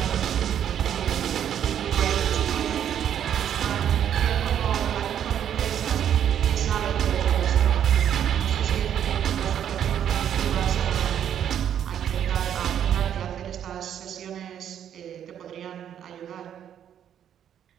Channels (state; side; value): quieter; left; 9.6 dB